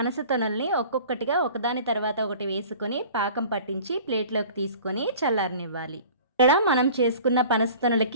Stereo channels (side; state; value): both; inverted; correlation -0.44